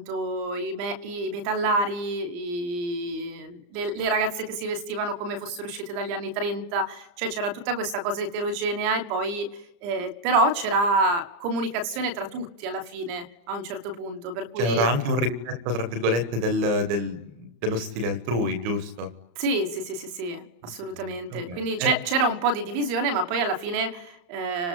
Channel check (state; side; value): late; left; 34 ms